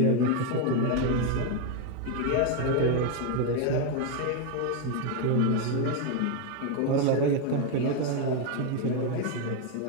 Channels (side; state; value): both; different; correlation 0.01